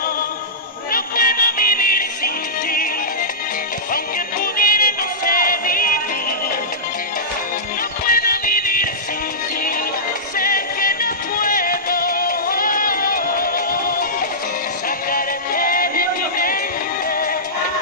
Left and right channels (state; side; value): normal; both; correlation -0.17